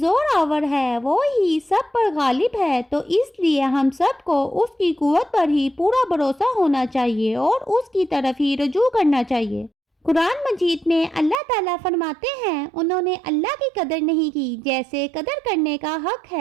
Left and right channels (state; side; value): drops out; left; at 11.4 s